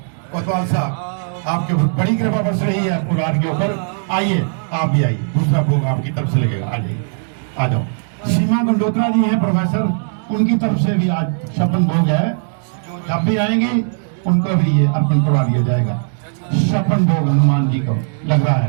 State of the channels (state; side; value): silent; left; digital silence